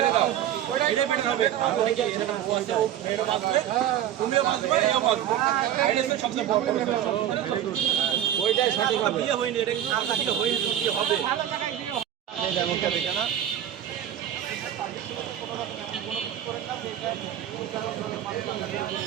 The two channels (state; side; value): quieter; left; 11.0 dB